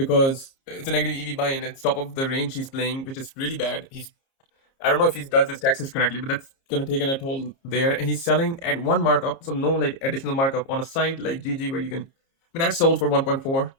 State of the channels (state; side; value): late; right; 30 ms